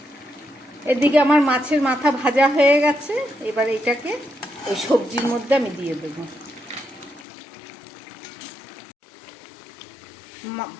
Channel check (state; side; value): drops out; right; at 7.2 s